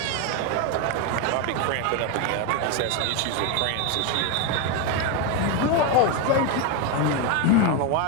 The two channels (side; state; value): both; different; correlation 0.02